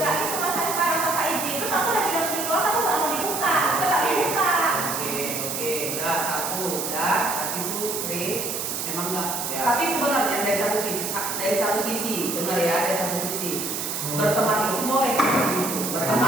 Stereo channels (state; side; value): noise; right; hiss, 3 dB below the sound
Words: gitu masa sekarang tanpa izin. Terus aku udah bilang di keluar aku nggak mau dibuka, tetap dibuka. Oke, udah satu, udah. Tadi tuh Chris memang enggak. Ya. Tapi sebenarnya dari satu sisi, dengar ya, dari satu sisi berteman itu boleh seperti itu.